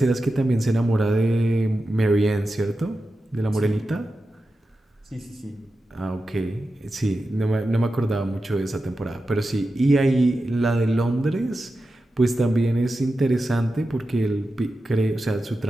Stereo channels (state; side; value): normal; both; correlation 0.91